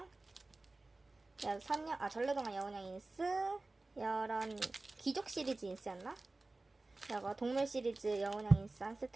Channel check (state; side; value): quieter; left; 3.1 dB